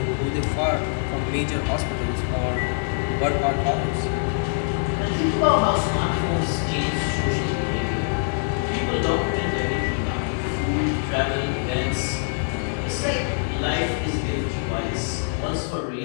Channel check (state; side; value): silent; right; 63 dB below the other